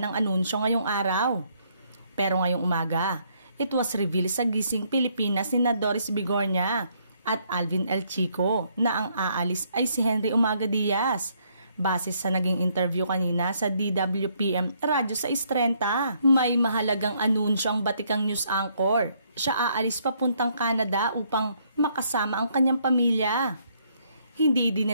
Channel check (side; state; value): both; inverted; correlation -0.70